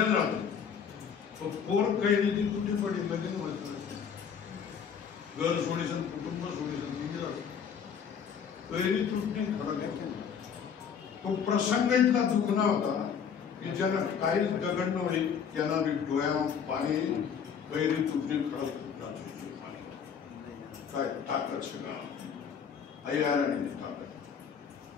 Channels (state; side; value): quieter; right; 7.2 dB